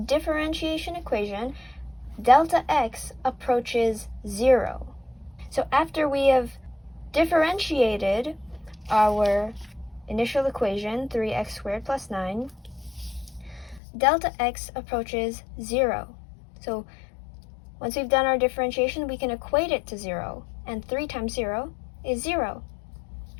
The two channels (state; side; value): drops out; right; at 13.8 s